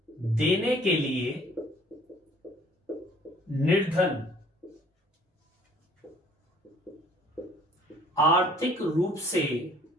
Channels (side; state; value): both; normal; correlation 0.55